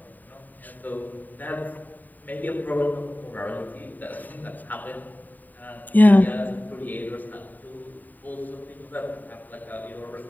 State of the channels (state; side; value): late; right; 0.086 ms